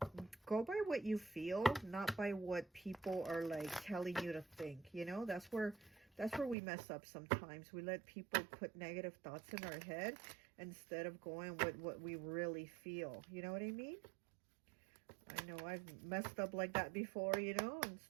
Go by what you feel, not by what people are like telling you to think. You know, that's where we mess up sometimes. We let people put negative thoughts in our head instead of going with what we really feel. You know what I mean? I know I've messed up like that before, you know.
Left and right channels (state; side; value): drops out; left; at 6.6 s